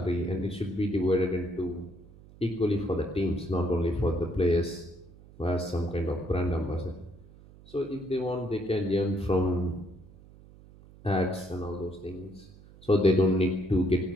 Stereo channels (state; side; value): noise; right; hum, 22 dB below the sound